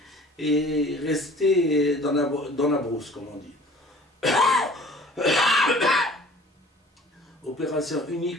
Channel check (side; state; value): both; normal; correlation 0.49